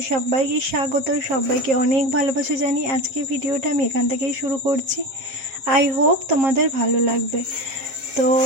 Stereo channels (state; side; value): late; left; 7.5 ms